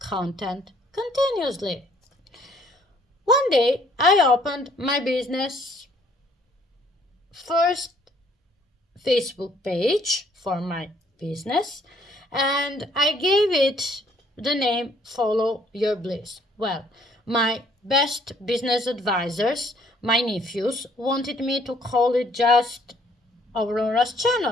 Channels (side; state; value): both; normal; correlation 0.63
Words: continuously. One day, I opened my business first Facebook page for my business, and I gave it the name Follow Your Bliss. Well, my best business advisors, my nephews, wanted me to call it just Aurora's